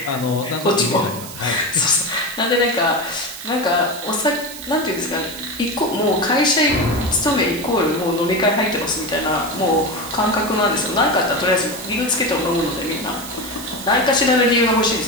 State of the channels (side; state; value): right; noise; hiss, 13 dB below the sound